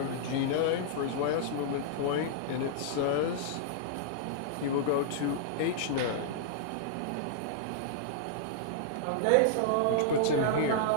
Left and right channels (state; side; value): different; both; correlation -0.01